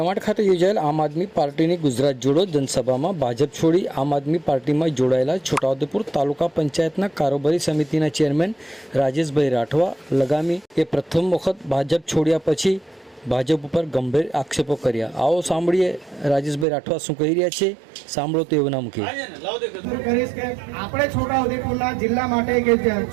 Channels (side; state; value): left; drops out; at 16.7 s